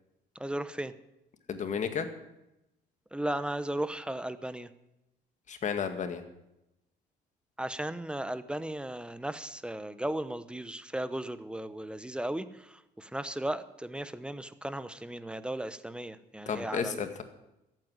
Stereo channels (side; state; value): both; normal; correlation 0.75